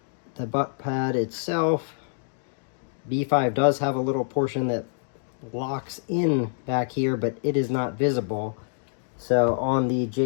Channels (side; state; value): right; silent; digital silence